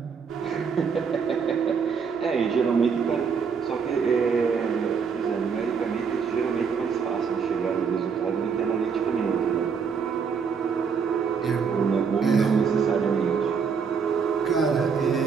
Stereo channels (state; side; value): quieter; left; 6.1 dB